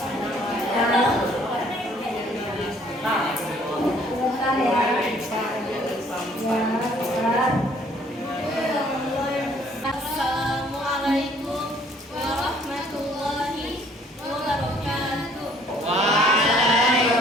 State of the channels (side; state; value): both; normal; correlation 0.60